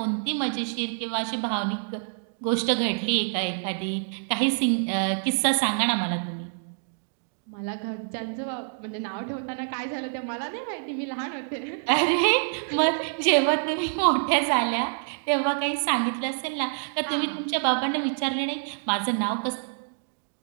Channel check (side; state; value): left; silent; digital silence